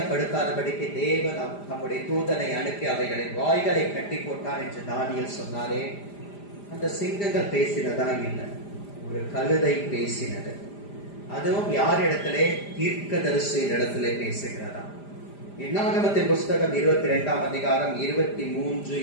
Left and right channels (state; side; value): late; right; 5.0 ms